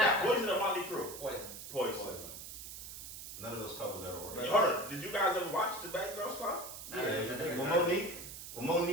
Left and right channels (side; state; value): right; noise; hiss, 10 dB below the sound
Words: Poison or Motley Crue? Poison. Poison. None of those couples ever worked. Hold on, did you guys ever watch the Bad Girls Club? Yeah, it was big. When